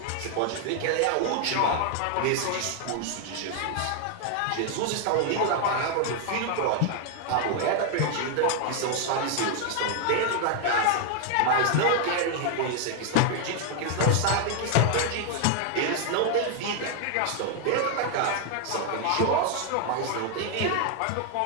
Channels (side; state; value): both; different; correlation 0.00